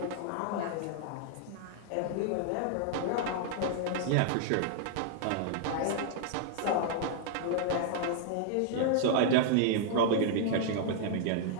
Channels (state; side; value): different; both; correlation -0.01